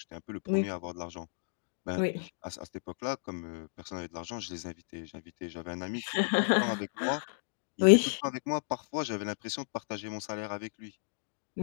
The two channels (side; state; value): right; silent; digital silence